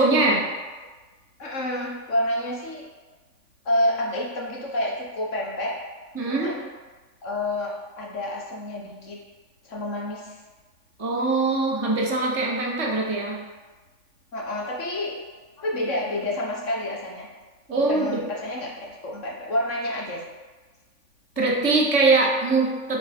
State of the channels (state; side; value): late; right; 3.5 ms